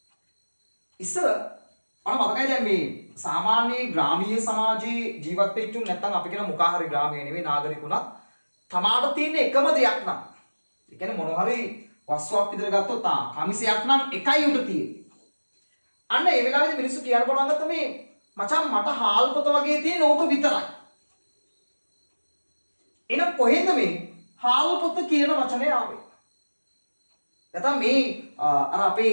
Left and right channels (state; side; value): inverted; both; correlation -1.00